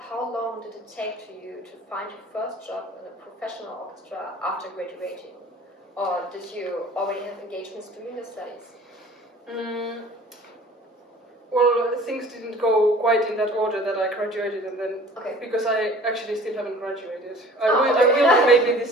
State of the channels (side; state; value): both; normal; correlation 0.47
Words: long did it take to you to find your first job in a professional orchestra after graduating? Or did you already have engagements during your studies? Well, things didn't go quite in that order that I graduated, and then because I actually still haven't graduated. I will maybe